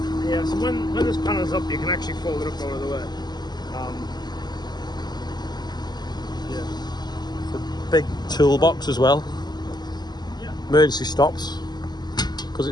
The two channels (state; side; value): late; right; 0.20 ms